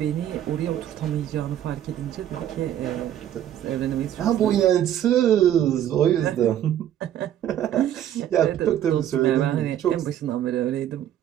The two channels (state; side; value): quieter; left; 11.1 dB